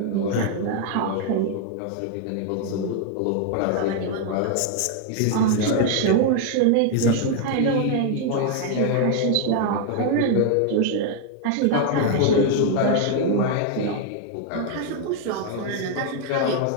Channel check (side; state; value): both; different; correlation 0.00